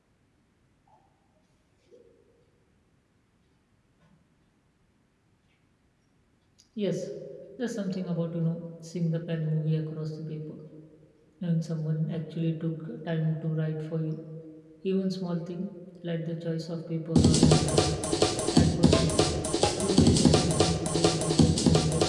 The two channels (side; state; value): both; identical; correlation 1.00